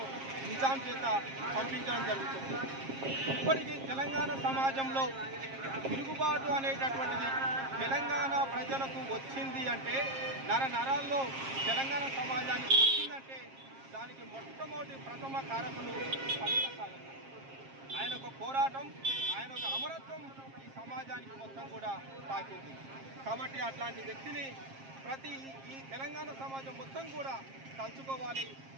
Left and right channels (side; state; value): left; late; 7.5 ms